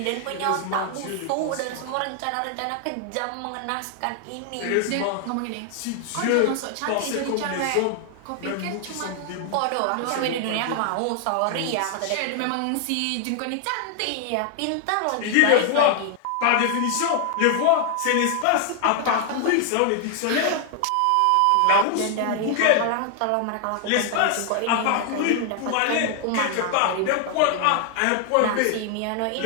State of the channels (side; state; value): both; different; correlation 0.00